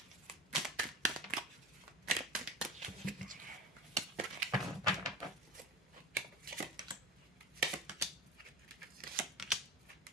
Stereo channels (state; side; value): normal; both; correlation 0.32